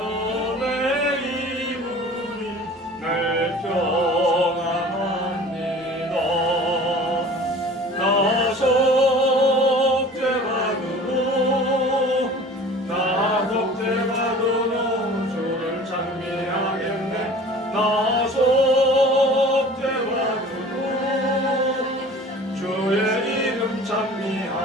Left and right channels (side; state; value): both; normal; correlation 0.44